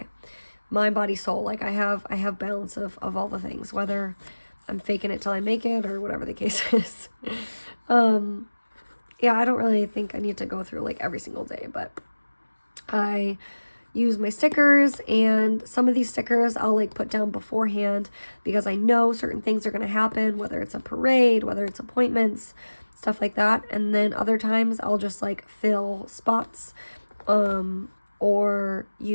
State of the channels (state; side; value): inverted; both; correlation -1.00